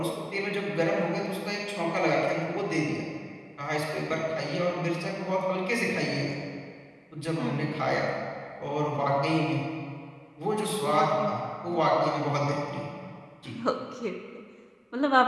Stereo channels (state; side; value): identical; both; correlation 1.00